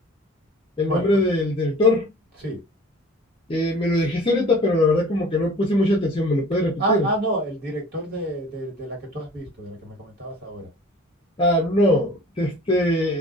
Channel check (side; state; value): both; normal; correlation 0.46